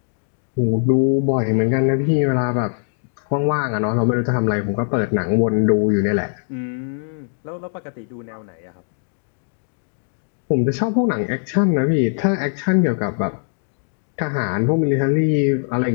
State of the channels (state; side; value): silent; right; 65 dB below the other